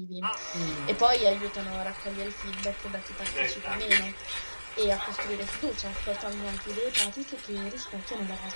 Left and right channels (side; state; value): both; inverted; correlation -1.00